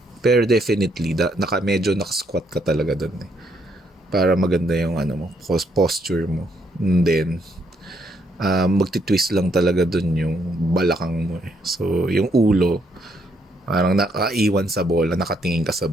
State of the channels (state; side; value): normal; both; correlation 0.73